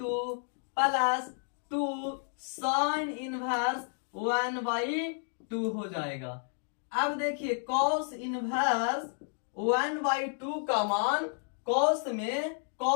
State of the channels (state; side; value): silent; right; 57 dB below the other